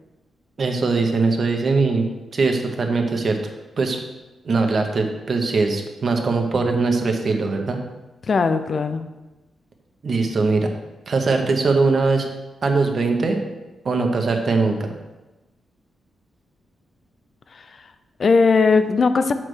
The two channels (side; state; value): both; normal; correlation 0.86